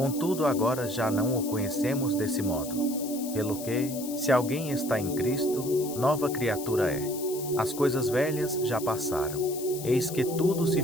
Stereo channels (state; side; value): noise; left; hiss, 11 dB below the sound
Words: agora já não o conhecemos desse modo. Pelo que, se alguém está em Cristo, nova criatura é. As coisas velhas já passaram, eis que tudo se